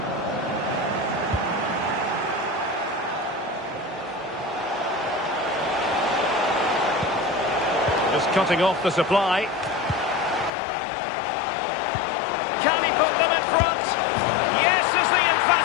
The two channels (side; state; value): right; drops out; at 10.5 s